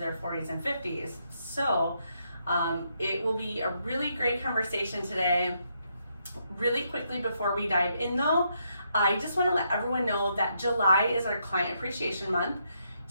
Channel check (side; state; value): both; inverted; correlation -0.77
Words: 40s and 50s. So it will be a really great conversation today. Really quickly before we dive in though, I just want to let everyone know that July is our Client Appreciation Month.